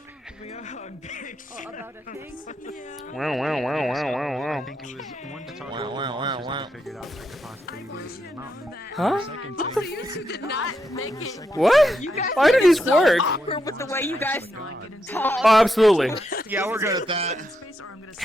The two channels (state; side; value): normal; both; correlation 0.82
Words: About a thing? Yeah. Wow, wow, wow, wow, wow, wow. I think it was one to talk about the monsters that figured out like the possibilities in the mountain. Huh? Second Also, you two did not make it. What? You guys Why did made it these so work? awkward with the way you guys talk. Oh, absolutely. Yeah, we're good at that.